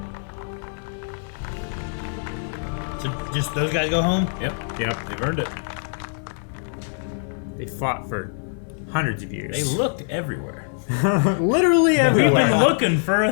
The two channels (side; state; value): right; silent; 63 dB below the other